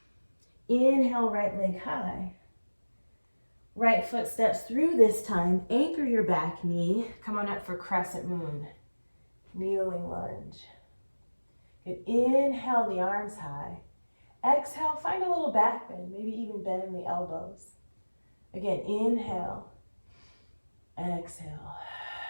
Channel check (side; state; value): both; inverted; correlation -1.00